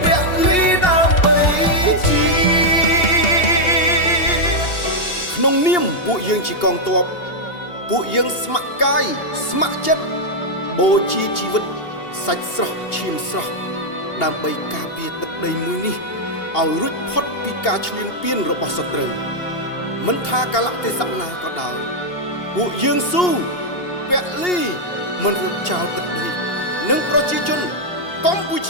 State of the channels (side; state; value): right; late; 2.8 ms